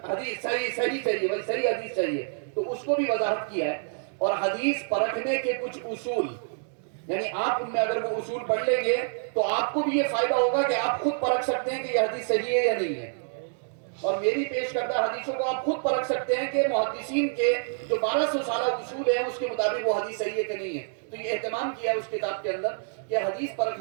حدیث صحیح چاہیے، بھائی صحیح حدیث چاہیے. تو اس کو بھی وضاحت کیا ہے. اور حدیث پرکھنے کے کچھ اصول، یعنی آپ ان میں اگر وہ اصول پڑھ لیں گے تو آپ کو بھی یہ فائدہ ہوگا کہ آپ خود پرکھ سکتے ہیں کہ یہ حدیث صحیح ہے یا نہیں ہے. اور میری پیش کردہ حدیثوں کو آپ خود پرکھ سکتے ہیں کہ محدثین کے جو 1200 سالہ اصول ہیں اس کے مطابق وہ حدیث صحیح ہے کہ نہیں ہے. تو یہ اہتمام کیا ہے اس کتاب کے اندر کہ حدیث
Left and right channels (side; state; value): left; silent; digital silence